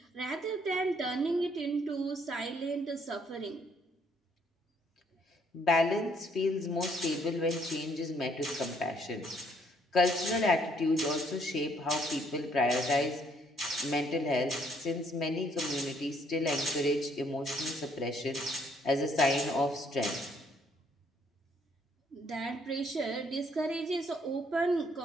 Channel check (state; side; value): normal; both; correlation 0.66